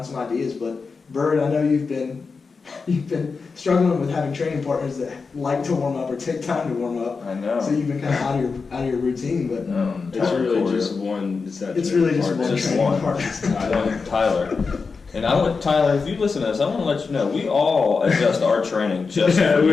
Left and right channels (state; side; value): quieter; right; 4.8 dB